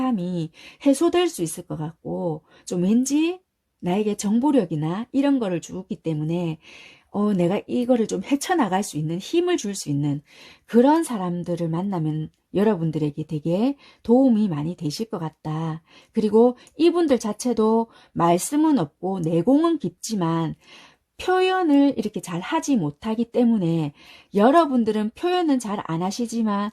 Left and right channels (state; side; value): identical; both; correlation 1.00